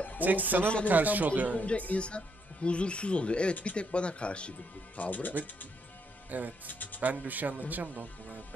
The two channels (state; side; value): normal; both; correlation 0.75